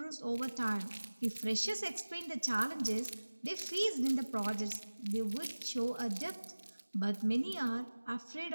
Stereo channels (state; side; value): inverted; both; correlation -1.00